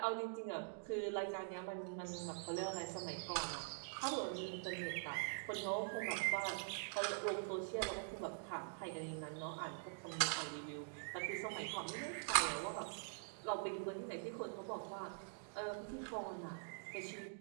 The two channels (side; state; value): left; silent; digital silence